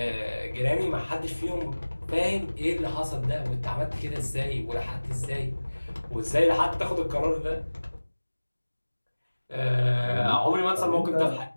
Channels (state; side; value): inverted; both; correlation -1.00